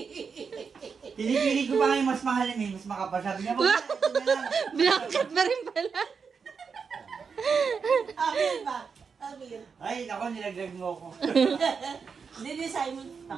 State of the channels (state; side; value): quieter; left; 5.7 dB